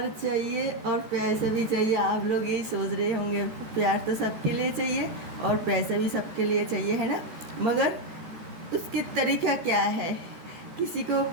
चाहिए और पैसा भी चाहिए। आप लोग यही सोच रहे होंगे, प्यार तो सबके लिए चाहिए और पैसा भी सबके लिए चाहिए, है ना। मगर उसके तरीका क्या है। किसी को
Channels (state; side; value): late; left; 13 ms